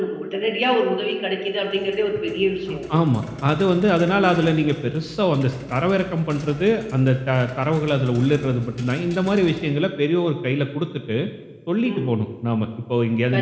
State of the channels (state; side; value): identical; both; correlation 1.00